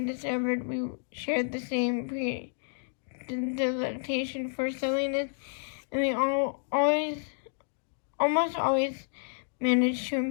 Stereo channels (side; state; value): right; silent; digital silence